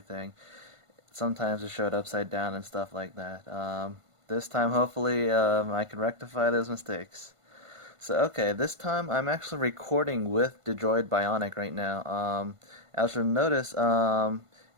sometimes it showed upside down and stuff like that. This time, hopefully, I can rectify those mistakes. So, okay, this time I'm actually recording with the Droid Bionic right now. As you'll notice,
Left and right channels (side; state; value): left; late; 1.5 ms